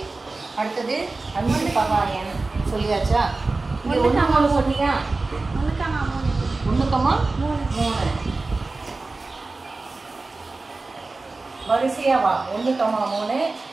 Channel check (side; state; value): left; quieter; 3.5 dB